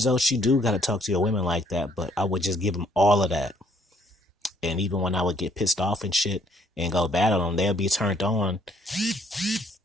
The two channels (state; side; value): normal; both; correlation 0.65